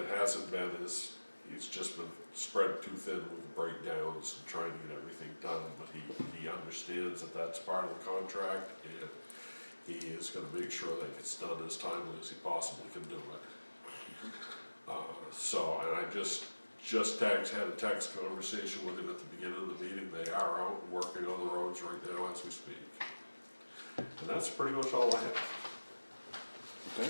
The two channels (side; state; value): both; inverted; correlation -1.00